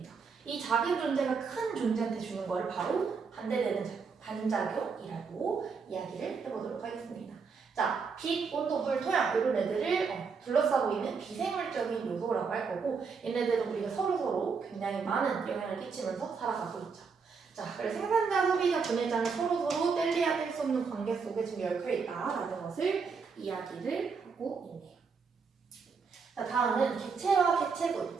이 작은 존재가 큰 존재한테 주는 걸 바로 반대되는 반작용이라고 이야기를 해보도록 하겠습니다. 자, 빛, 온도, 물, 토양 이런 애들을 둘러싸고 있는 비생물적인 요소라고 할 거고 얘네들은 우리가 서로서로 굉장히 많은 영향을 끼치면서 살아가고 있죠. 자, 그래서 생산자, 소비자, 분해자는 서로서로 뗄래야 뗄 수 없는 관계 속에 지금 얽혀 있다라는 것을 이야기를 하고 있네요. 자, 다음은 객체와 객체군,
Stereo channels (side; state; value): left; quieter; 5.3 dB